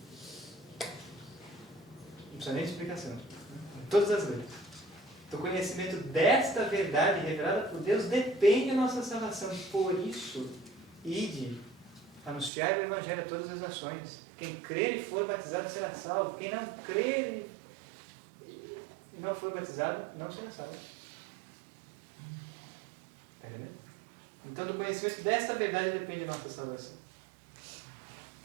Não precisa nem de explicação. Em todas as leis. Do conhecimento desta verdade revelada por Deus depende a nossa salvação. Por isso, ide, anunciar o Evangelho a todas as nações. Quem crer e for batizado será salvo. Quem não crer e não for batizado não será salvo. Está entendendo? Então, do conhecimento desta verdade depende a nossa salvação.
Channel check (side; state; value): left; drops out; at 12.5 s